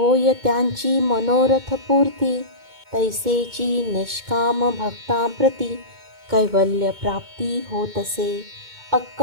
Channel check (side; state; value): left; late; 2.2 ms